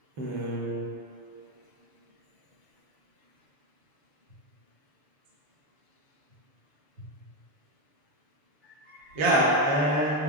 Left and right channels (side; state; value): left; late; 6.9 ms